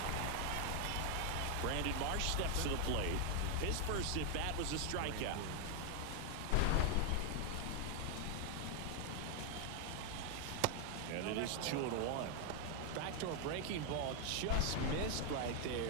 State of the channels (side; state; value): both; different; correlation 0.00